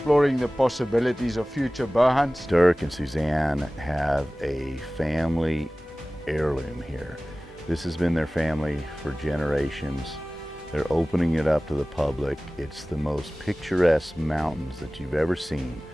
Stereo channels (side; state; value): both; normal; correlation 0.98